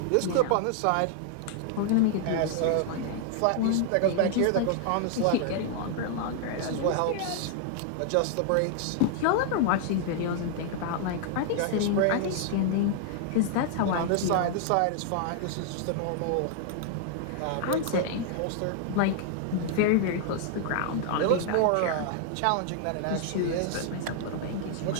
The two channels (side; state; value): both; different; correlation 0.00